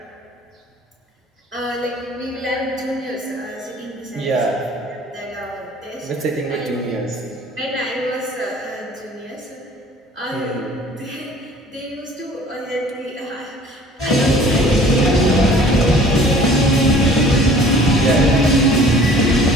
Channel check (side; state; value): both; normal; correlation 0.50